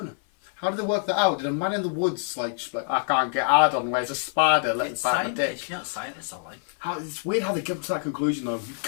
How did they work that out? Did a man in the woods just like I can't get hard on, where's a spider? Let's bite my dick. You know, scientists are like... It's weird how they come to that conclusion though.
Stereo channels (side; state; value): right; silent; 56 dB below the other